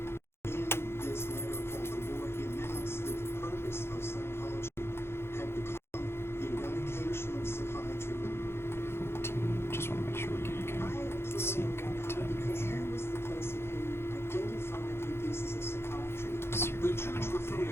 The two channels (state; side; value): late; right; 0.12 ms